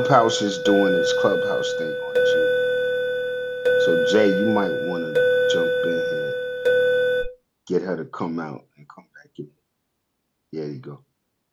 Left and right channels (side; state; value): both; identical; correlation 1.00